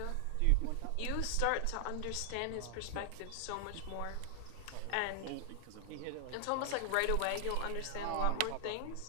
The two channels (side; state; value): both; different; correlation 0.00